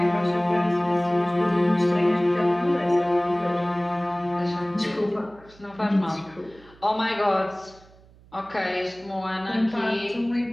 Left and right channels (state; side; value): noise; right; hum, 26 dB below the sound